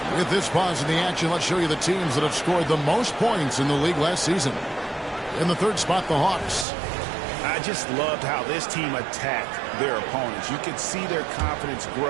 With this pause in the action, let's show you the teams that have scored the most points in the league last season. In the 3rd spot, the Hawks. I just loved how this team attacked their opponents. You could see their confidence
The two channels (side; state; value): left; drops out; at 6.7 s